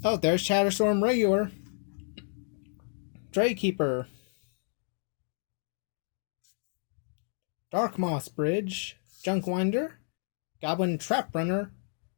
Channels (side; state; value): right; silent; digital silence